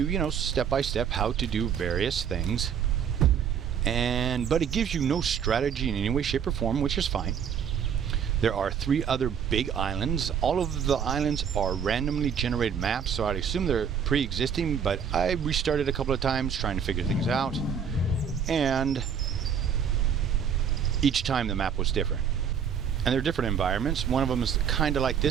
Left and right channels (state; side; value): quieter; left; 7.6 dB